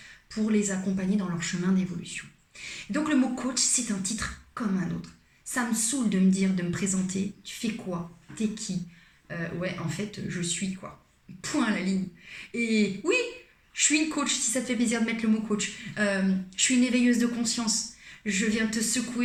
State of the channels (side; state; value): both; identical; correlation 1.00